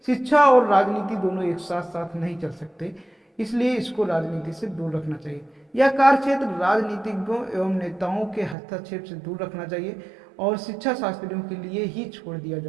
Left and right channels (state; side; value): drops out; left; at 8.6 s